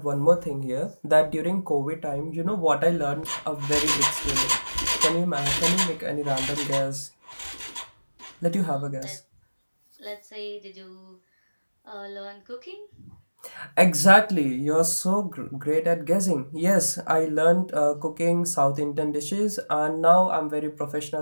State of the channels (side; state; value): both; inverted; correlation -1.00